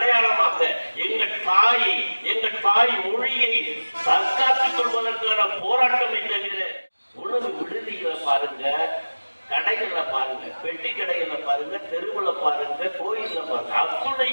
எங்கள் தாய் மொழியை தற்காத்துக் கொள்வதற்கான போராட்டம் தவிர உணவு விடுதிகளை பாருங்க, கடைகளை பாருங்க, பெட்டி கடைகளை பாருங்க, தெருவுல பாருங்க, கோயில்ல பாருங்க,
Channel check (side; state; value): both; inverted; correlation -1.00